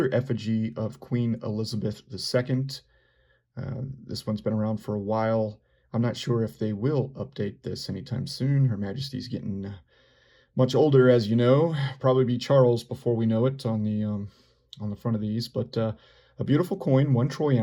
effigy of Queen Elizabeth II. This one's been around for a while. I'm not sure if they will update this anytime soon. Her Majesty's getting much older, as you know. Probably be Charles before we know it on the front of these, but a beautiful coin, 1 troy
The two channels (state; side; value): identical; both; correlation 1.00